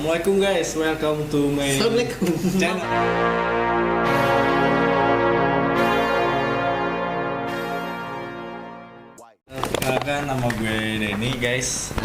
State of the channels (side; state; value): both; identical; correlation 1.00